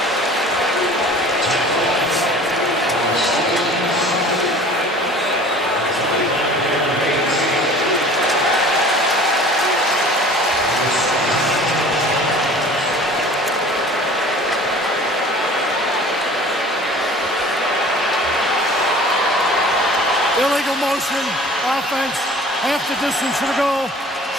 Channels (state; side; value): normal; both; correlation 0.45